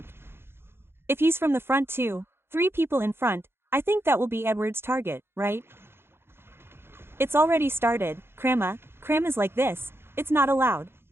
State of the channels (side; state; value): left; late; 0.11 ms